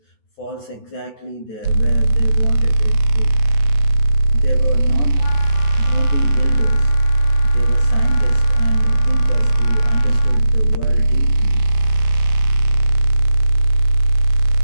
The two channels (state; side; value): late; right; 14 ms